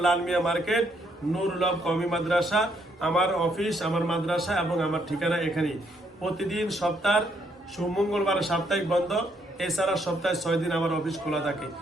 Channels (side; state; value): both; normal; correlation 0.72